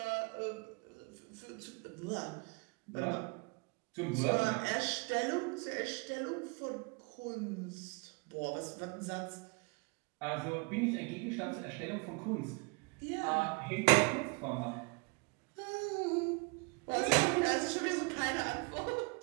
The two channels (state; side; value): quieter; left; 30.2 dB